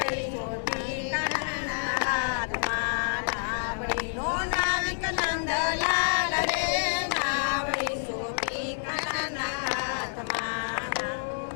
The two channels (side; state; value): right; silent; 59 dB below the other